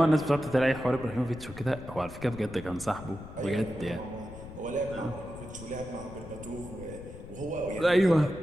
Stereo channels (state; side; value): noise; left; rumble, 13 dB below the sound